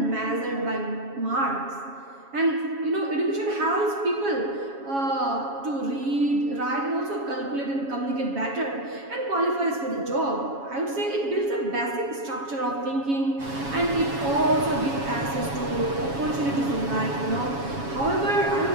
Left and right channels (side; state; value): left; late; 7.2 ms